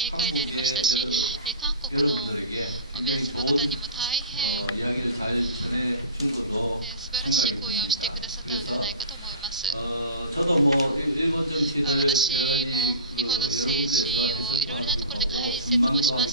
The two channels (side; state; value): both; inverted; correlation -0.36